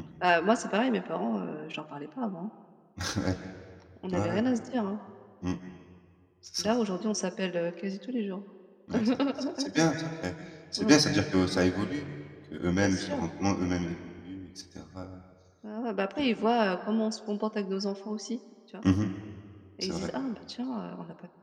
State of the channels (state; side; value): identical; both; correlation 1.00